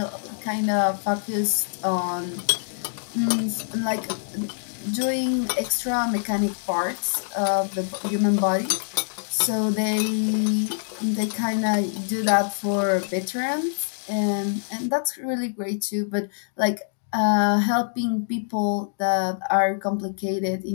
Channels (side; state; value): right; silent; digital silence